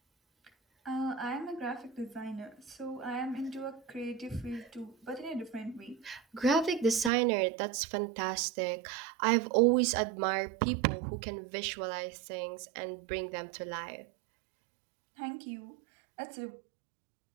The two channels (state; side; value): drops out; left; at 7.1 s